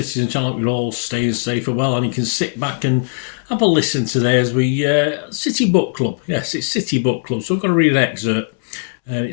channel. We're all staying safe and well, and you can sit back and have a listen today as we City Book Club. Yes, it's City Book Club. So I'm going to read an excerpt.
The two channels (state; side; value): silent; right; 67 dB below the other